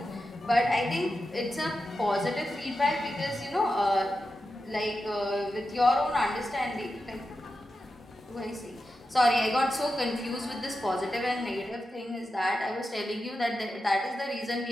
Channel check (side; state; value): both; normal; correlation 0.90